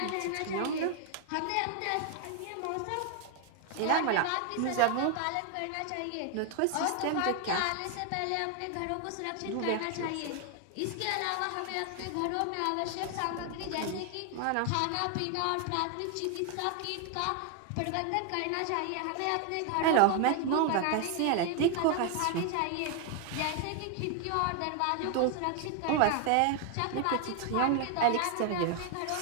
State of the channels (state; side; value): different; both; correlation 0.01